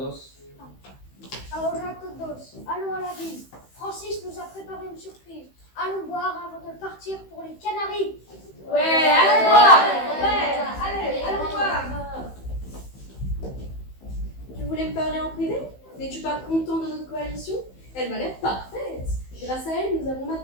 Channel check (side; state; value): right; late; 15 ms